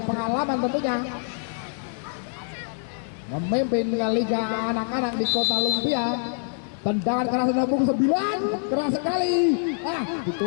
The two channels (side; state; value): right; silent; digital silence